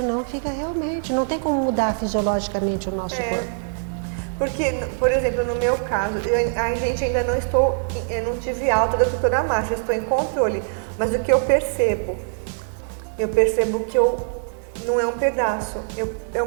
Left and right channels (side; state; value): left; silent; 61 dB below the other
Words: fica realmente, não tem como mudar fisiologicamente o nosso corpo. Porque, por exemplo, no meu caso, a gente ainda eu não tive alta da doutora Márcia, estou em controle, mas o que eu percebo que não é um pedaço, é um